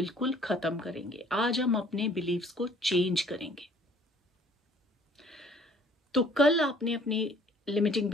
खत्म करेंगे। आज हम अपने बिलीव्स को चेंज करेंगे। तो कल आपने अपनी लिमिटिंग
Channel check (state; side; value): normal; both; correlation 0.56